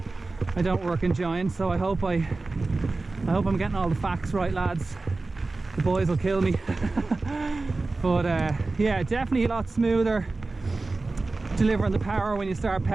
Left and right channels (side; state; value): left; quieter; 3.5 dB